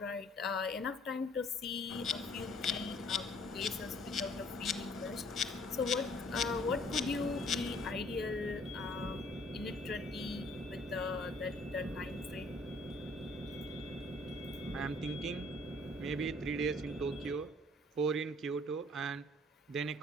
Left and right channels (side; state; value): both; normal; correlation 0.59